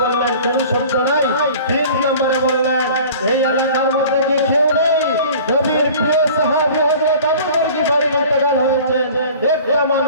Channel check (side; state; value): both; inverted; correlation -0.44